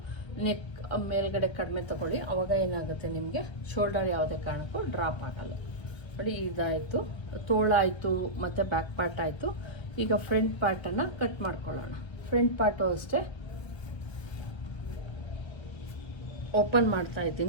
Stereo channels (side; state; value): right; late; 1.3 ms